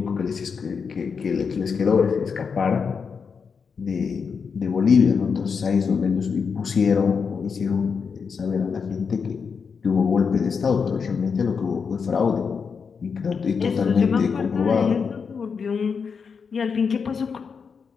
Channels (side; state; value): right; quieter; 5.8 dB